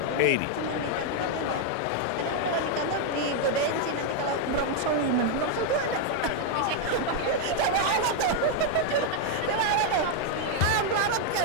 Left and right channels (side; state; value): both; different; correlation 0.00